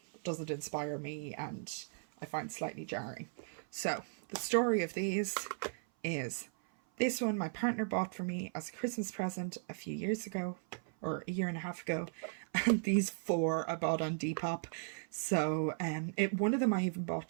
doesn't inspire me and I find slightly jarring. So the story of these is, this one my partner bought for me as a Christmas present a few years ago, or a year and a half ago, and these 4 I bought on Depop. So one of them I even bought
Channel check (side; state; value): left; silent; 53 dB below the other